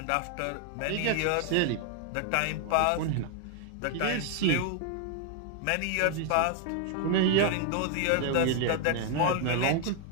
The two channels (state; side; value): different; both; correlation 0.00